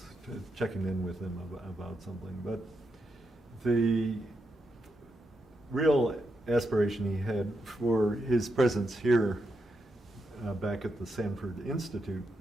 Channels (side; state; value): both; normal; correlation 0.84